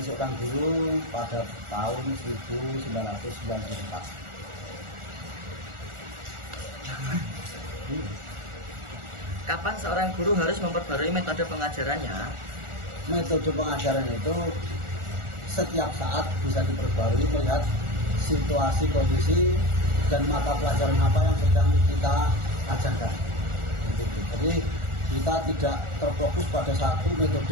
seorang guru pada tahun 1994. Kapan seorang guru harus memperbarui metode pengajarannya? Metode pengajaran itu setiap saat bisa diperbarui melihat situasi, kondisi, dan mata pelajaran apa yang sedang kita ajarkan. Jadi kita tidak terfokus pada satu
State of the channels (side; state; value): left; late; 1.4 ms